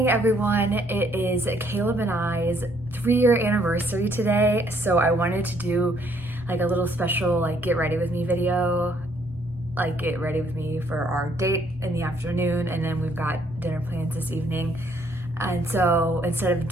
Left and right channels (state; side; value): normal; both; correlation 0.67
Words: everyone. It is Caleb and I's 3-year anniversary today, so I wanted to do like a little special get ready with me video, get ready with me for our date in the afternoon, and then we've got dinner plans this evening. And so instead of